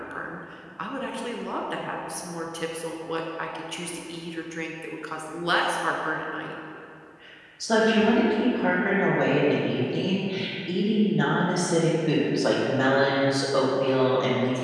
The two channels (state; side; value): identical; both; correlation 1.00